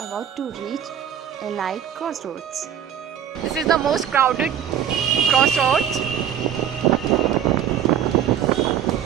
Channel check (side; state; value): left; quieter; 9.6 dB